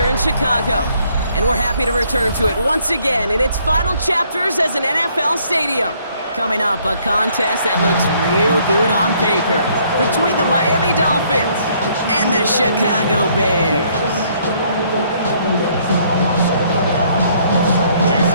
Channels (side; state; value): both; inverted; correlation -0.65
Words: in Chicago. And we're happy to return to it once again in its final chapters as an NFL stadium. Coming up, a contest that looks real good on paper between the Miami Dolphins and the Chicago Bears.